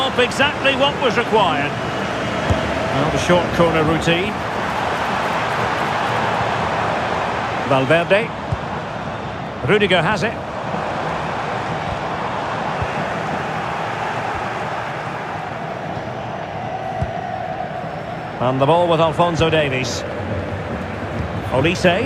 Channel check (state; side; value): identical; both; correlation 1.00